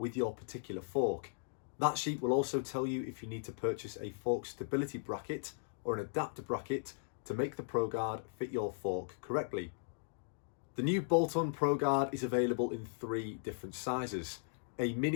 your particular fork. That sheet will also tell you if you need to purchase a fork stability bracket or an adapter bracket to make the ProGuard fit your fork correctly. The new bolt-on ProGuard is available in 3 different sizes: a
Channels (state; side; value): silent; right; digital silence